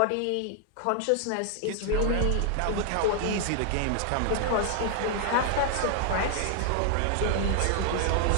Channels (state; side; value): different; both; correlation 0.00